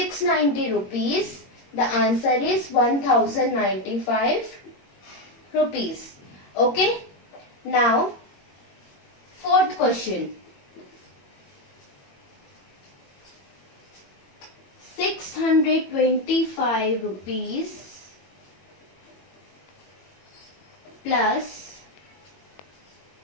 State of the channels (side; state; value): right; late; 21 ms